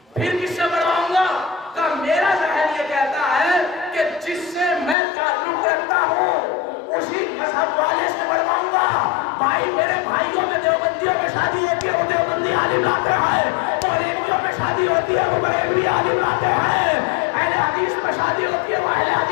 پھر کس سے پڑھواؤں گا؟ کہا میرا ذہن یہ کہتا ہے کہ جس سے میں تعلق رکھتا ہوں اسی مذہب والے سے پڑھواؤں گا. بھائی میرے بھائیوں میں دیوبندیوں میں شادی ہوتی ہے, وہ دیوبندی عالم لاتے ہیں, بریلویوں میں شادی ہوتی ہے, وہ بریلوی عالم لاتے ہیں, اہل حدیث میں شادی ہوتی ہے, وہ اہل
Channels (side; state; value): right; drops out; at 5.0 s